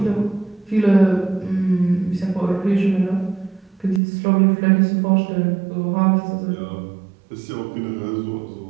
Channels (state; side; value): drops out; left; at 4.0 s